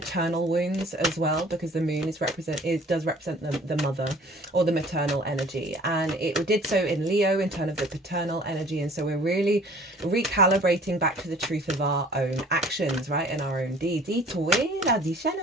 wounds as well, because the moon does represent the mother or the maternal energy, and it did so in Leo in terms of the paternal energy. And so we're really recalibrating back to the truth of our own actions, right, and our own deeds.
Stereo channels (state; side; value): normal; both; correlation 0.51